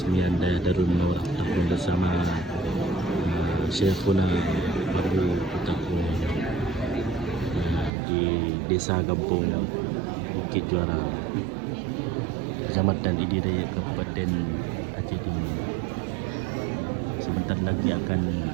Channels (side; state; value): left; drops out; at 7.9 s